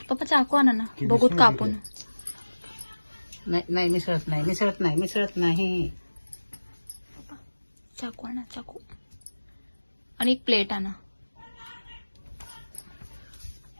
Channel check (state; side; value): inverted; both; correlation -1.00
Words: पप्पा चाकू आणा ना, बघूत कापून. नाही नाही मिसळत नाही, मिसळत नाही, मिसळत नाही. चाकू आणा, चाकू. आणि एक प्लेट आणा.